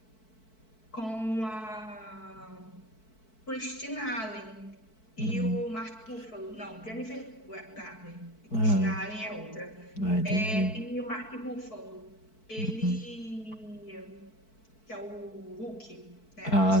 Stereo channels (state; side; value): late; right; 4.6 ms